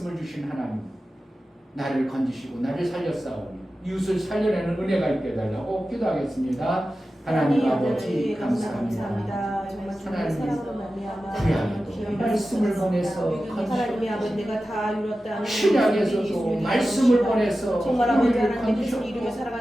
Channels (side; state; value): both; normal; correlation 0.94